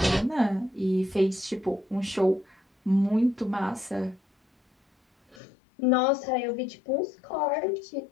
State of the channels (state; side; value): drops out; right; at 5.4 s